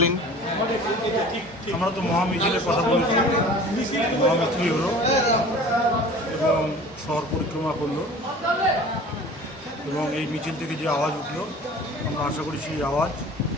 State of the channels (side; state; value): both; normal; correlation 0.43